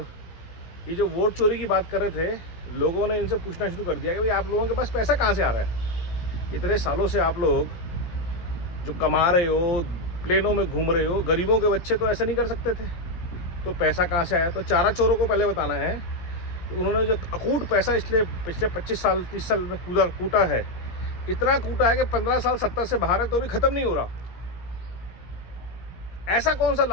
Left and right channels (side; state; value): right; late; 17 ms